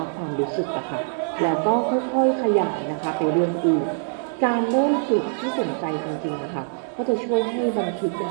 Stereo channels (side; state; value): left; silent; digital silence